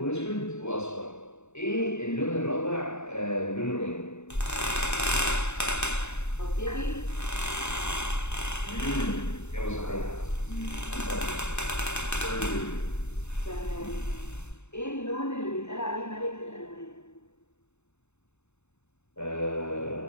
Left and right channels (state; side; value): late; right; 0.82 ms